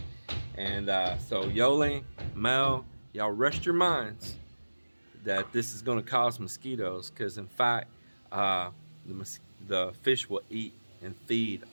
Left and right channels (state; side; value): inverted; both; correlation -1.00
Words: And so Yoli, Mel, y'all rest your minds that this is going to cause mosquitoes, because in fact the fish will eat and feed